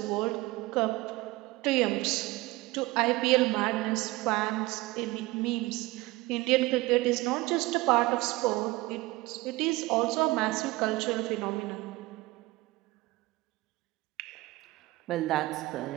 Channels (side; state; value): left; quieter; 20.6 dB